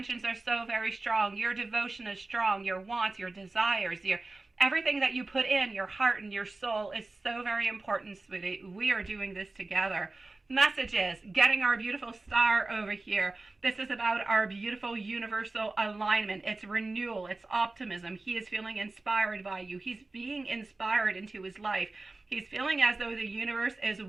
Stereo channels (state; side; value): quieter; left; 3.2 dB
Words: are so very strong. Your devotion is strong. Your wants, your desires, everything that you put in, your heart and your soul is so very important, sweetie. We are doing this together. Messages, getting our beautiful star over here. This is about our beautiful universal alignment. It's renewal. It's optimism. He is feeling inspired by you. He's being inspired into his life. He's feeling as though the universe is